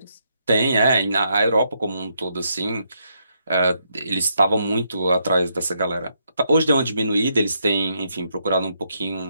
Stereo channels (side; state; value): both; inverted; correlation -0.77